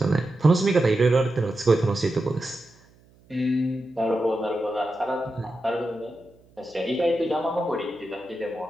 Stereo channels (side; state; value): right; noise; hum, 30 dB below the sound